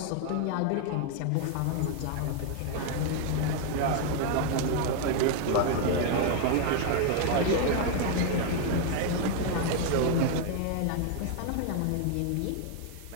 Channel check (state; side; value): different; both; correlation 0.00